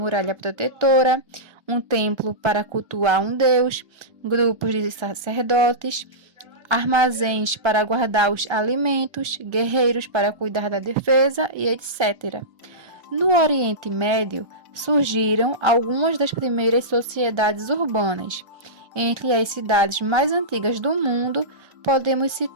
protetora, um templo para cultuar um deus, grupos de sacerdotes, armazéns para guardar os alimentos, guerreiros para cuidar da defesa e etc. No Oriente Médio, surgiram algumas das primeiras sociedades urbanas. Entre as cidades mais antigas do mundo, podemos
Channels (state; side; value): late; left; 1.3 ms